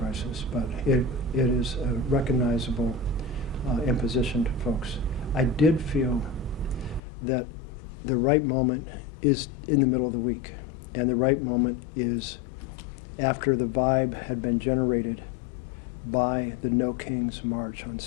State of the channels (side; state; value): right; drops out; at 7.0 s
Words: but it is a recognizable imposition to folks. I did feel that the right moment is in the middle of the week, and the right moment is after the vibe had been generated by the No Kings March on